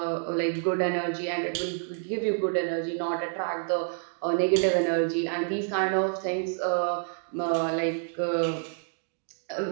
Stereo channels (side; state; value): left; silent; digital silence